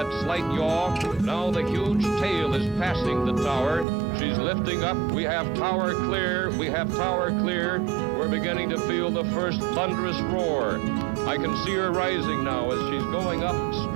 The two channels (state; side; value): drops out; left; at 3.9 s